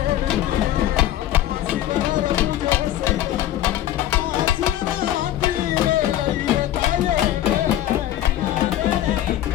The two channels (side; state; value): right; quieter; 12.9 dB